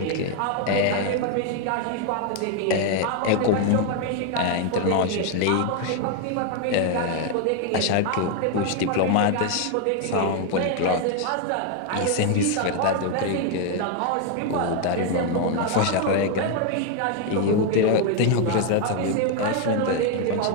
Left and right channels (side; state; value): both; different; correlation 0.01